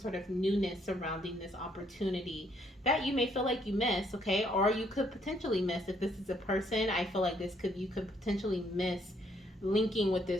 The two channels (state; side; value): normal; both; correlation 0.69